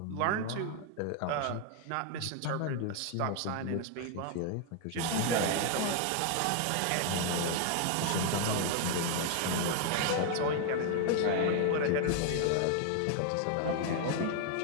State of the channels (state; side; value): different; both; correlation 0.00